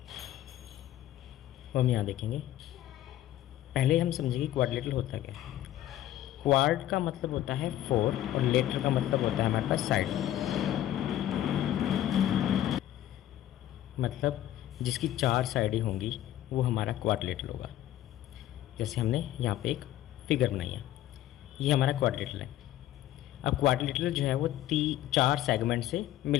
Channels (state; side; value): quieter; right; 13.0 dB